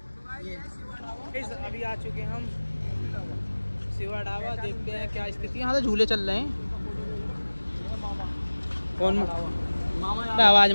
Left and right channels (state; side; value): inverted; both; correlation -1.00